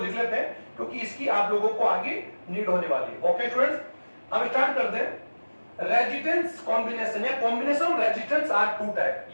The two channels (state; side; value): inverted; both; correlation -1.00